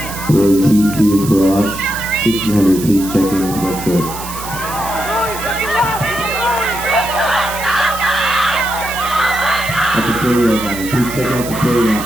Boys heat 2, Garage, 1600, please check in with red coat. At the 40-yard line, please check out the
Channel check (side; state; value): right; noise; hiss, 11 dB below the sound